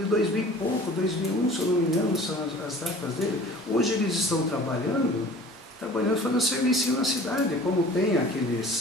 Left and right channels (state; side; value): normal; both; correlation 0.45